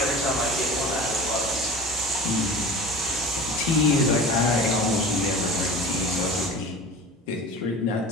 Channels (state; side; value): normal; both; correlation 0.37